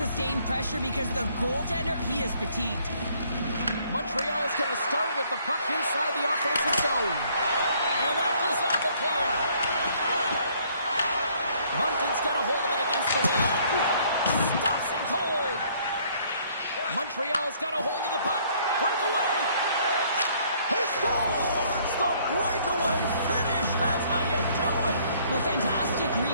pressure because the goaltender, he is fatigued. Montreal's going to start with the puck inside the offensive zone. And that goes off a player. Moncton's got a hold of it against the wall. Stops him cold. Montreal's got a hold of the puck. Breakaway. He scores! The breakaway finish. That's how you do it. Well, fantastic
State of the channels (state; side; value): inverted; both; correlation -0.62